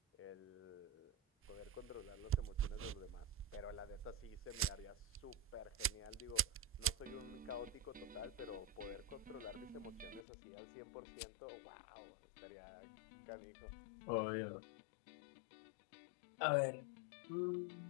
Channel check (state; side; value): drops out; right; at 10.2 s